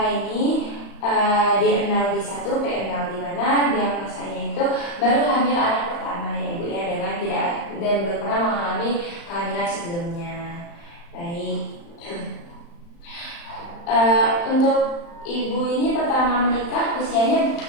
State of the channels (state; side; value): late; right; 35 ms